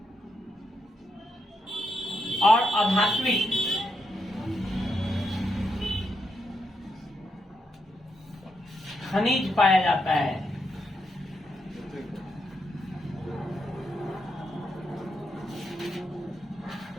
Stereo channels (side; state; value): both; normal; correlation 0.81